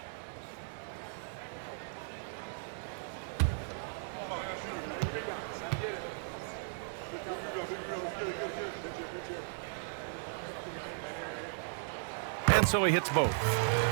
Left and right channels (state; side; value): silent; left; digital silence